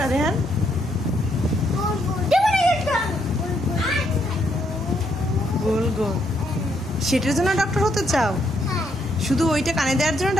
রেহান? গোল গোল সেটার জন্য ডক্টর হতে চাও? শুধু ওইটা কানে দেওয়ার জন্য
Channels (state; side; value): normal; both; correlation 0.74